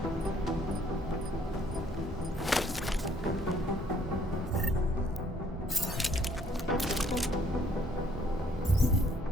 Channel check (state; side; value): normal; both; correlation 0.63